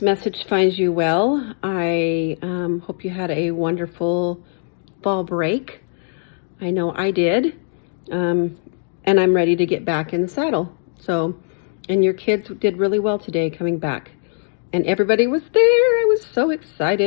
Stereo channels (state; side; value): silent; right; digital silence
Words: message finds you well. I hope you had a wonderful fall break. I know I did. And I'm ready to get back in the saddle. And your kids did really well today coming back. And everybody was there. I was so